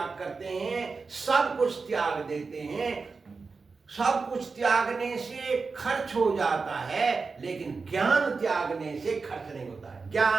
करते हैं, सब कुछ त्याग देते हैं। सब कुछ त्यागने से खर्च हो जाता है, लेकिन ज्ञान त्यागने से खर्च नहीं होता है।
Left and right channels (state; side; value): quieter; left; 4.5 dB